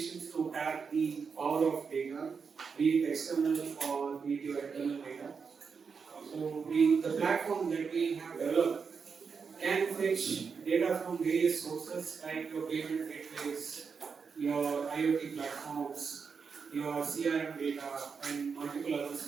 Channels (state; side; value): quieter; left; 5.7 dB